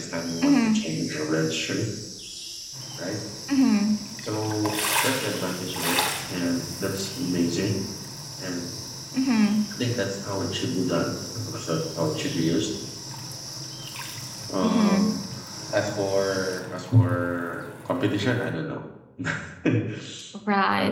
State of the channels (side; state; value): both; identical; correlation 1.00